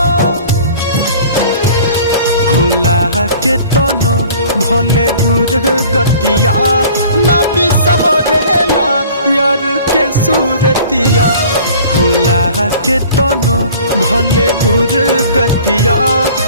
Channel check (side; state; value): both; inverted; correlation -0.48